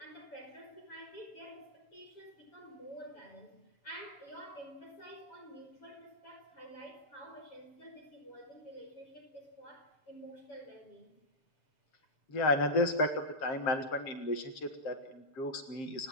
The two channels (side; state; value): right; late; 7.5 ms